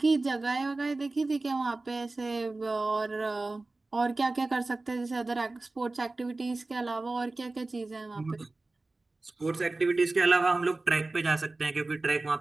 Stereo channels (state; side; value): quieter; left; 3.2 dB